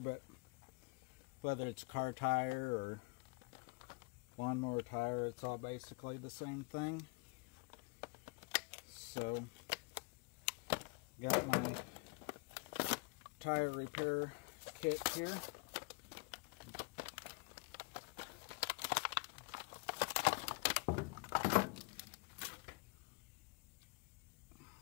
whether it's a car tire or lawnmower tire, it's all basically the same thing. So, got my tire repair kit here.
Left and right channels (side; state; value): right; quieter; 29.9 dB